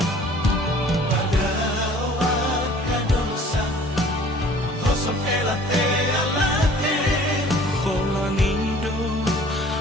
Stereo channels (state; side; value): normal; both; correlation 0.51